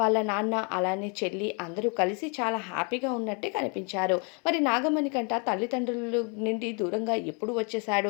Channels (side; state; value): right; quieter; 35.9 dB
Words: నాన్న అలానే చెల్లి అందరూ కలిసి చాలా హ్యాపీగా ఉన్నట్టే కనిపించారు. మరి నాగమణికంట తల్లిదండ్రుల నుండి దూరంగా ఎప్పుడు